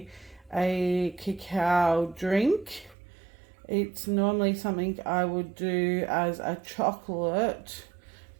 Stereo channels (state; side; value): drops out; left; at 3.0 s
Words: a cacao drink. It's normally something I would do as a chocolate,